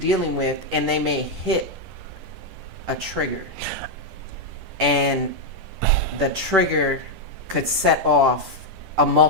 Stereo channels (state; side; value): late; left; 10 ms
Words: with, and they may hit a trigger, and the trigger could set off a